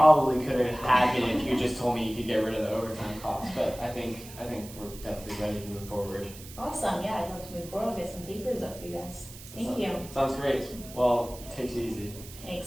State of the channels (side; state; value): right; noise; hiss, 16 dB below the sound